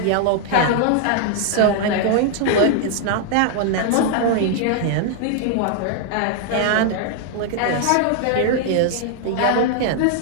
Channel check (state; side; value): different; both; correlation 0.00